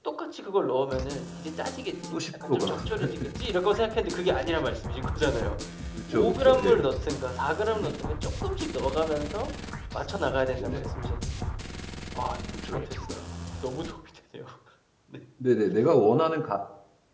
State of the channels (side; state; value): both; identical; correlation 1.00